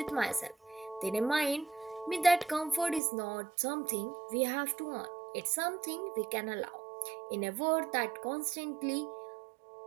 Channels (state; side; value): drops out; left; at 3.0 s